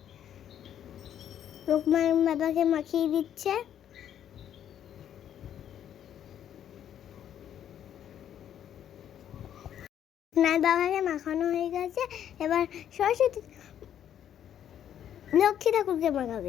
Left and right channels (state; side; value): quieter; right; 10.1 dB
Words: লোকনাথ বাবাকে মাখিয়ে দিচ্ছে। লোকনাথ বাবাকে মাখানো হয়ে গেছে, এবার সরস্বতী লক্ষ্মী ঠাকুরকে